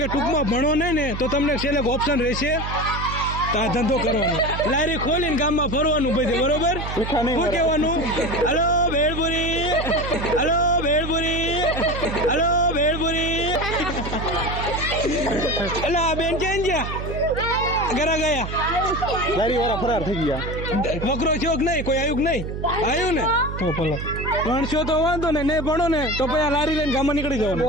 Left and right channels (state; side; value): noise; right; hum, 6 dB below the sound